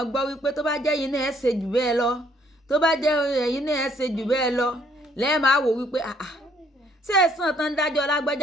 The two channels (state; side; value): normal; both; correlation 0.66